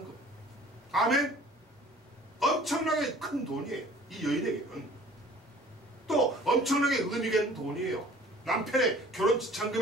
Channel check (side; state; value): both; normal; correlation 0.50